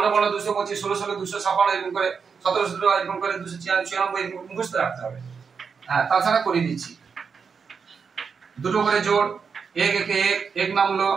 15 225, 16 16 256 এরকম করে, 17 17 এরকম করে 296 এরকম মুখস্থ রাখতে হবে। হ্যাঁ, তাছাড়া করে দিচ্ছি দুটো করে জোড়, 1 1 1 1 নামলো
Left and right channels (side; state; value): left; quieter; 5.9 dB